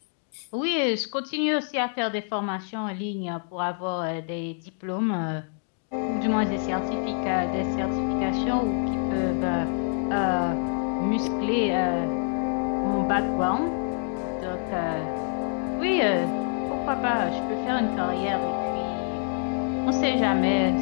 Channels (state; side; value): silent; right; 61 dB below the other